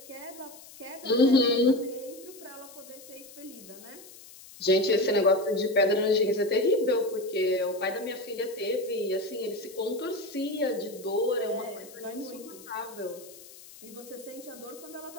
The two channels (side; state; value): left; noise; hiss, 19 dB below the sound